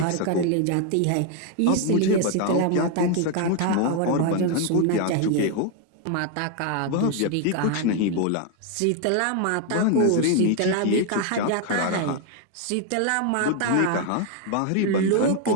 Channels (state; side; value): different; both; correlation 0.01